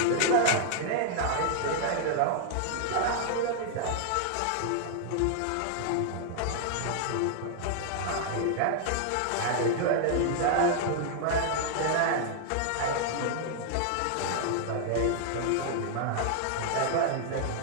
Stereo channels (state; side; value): different; both; correlation 0.00